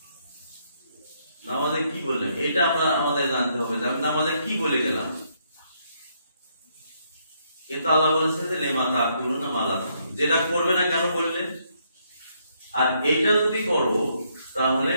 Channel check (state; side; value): inverted; both; correlation -0.73